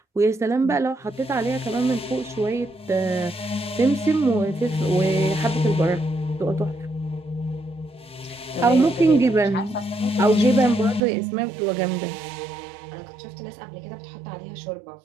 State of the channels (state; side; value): drops out; left; at 11.0 s